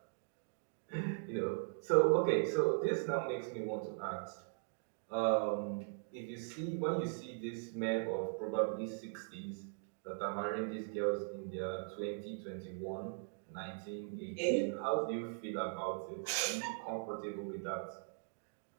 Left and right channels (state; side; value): silent; left; digital silence